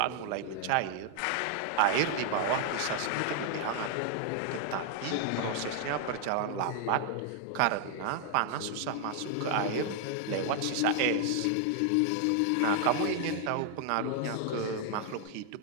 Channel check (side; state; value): both; different; correlation 0.00